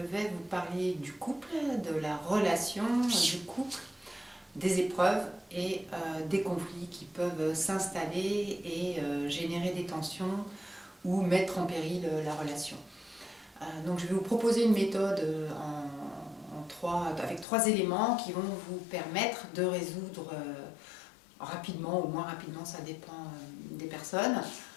vous parler du couple, de la relation du couple, des épreuves et des conflits qui peuvent s'installer et générer des tensions ou mettre en péril la relation. Donc je vais vous proposer une méthode avec trois éléments qui vont vous permettre de résoudre rapidement, ou moins rapidement, ça dépend des personnes,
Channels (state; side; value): drops out; right; at 17.4 s